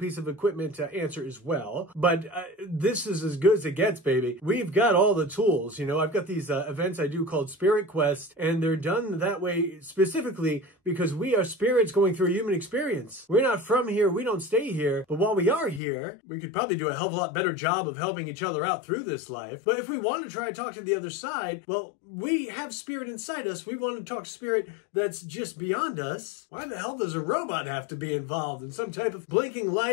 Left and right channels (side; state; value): right; drops out; at 15.8 s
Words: of equipment answer as well, but this is as good as it gets, baby. We've got all the tools. You know, I've got these events I do called Spirit Quest, and they're done that way specifically because we are spirits going through a human experience. We're not from here, we don't stay here, but while we are here, we could probably do a hell of a lot better job of helping each other out through this life. But if we want to try to talk to the other side, well, we have spirit inside us. We want to talk to spirit that's just beyond us. Why the hell does a robot have to be involved in some type of blinking